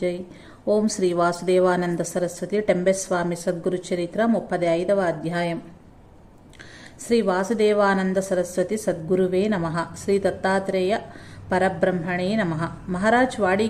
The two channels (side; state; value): both; identical; correlation 1.00